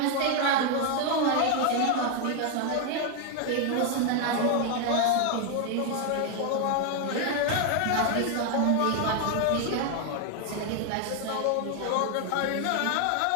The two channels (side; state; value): both; different; correlation 0.01